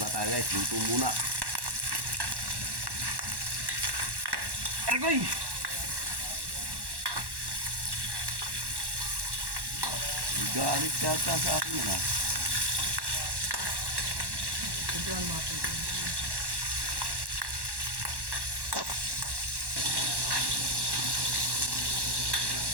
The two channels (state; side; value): late; left; 1.1 ms